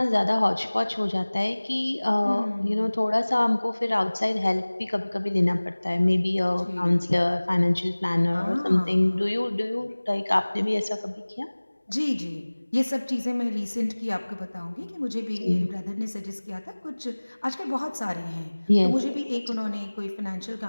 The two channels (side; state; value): both; inverted; correlation -1.00